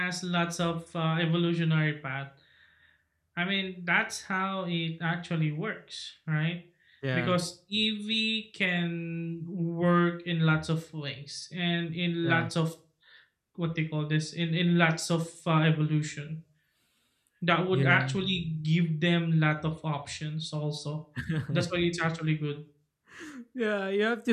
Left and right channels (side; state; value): both; identical; correlation 1.00